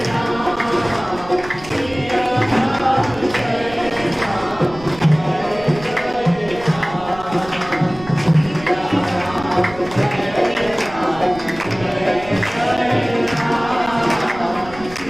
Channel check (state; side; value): noise; right; rumble, 17 dB below the sound